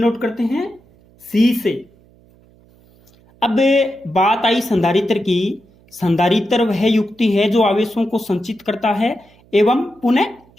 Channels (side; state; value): right; noise; hum, 30 dB below the sound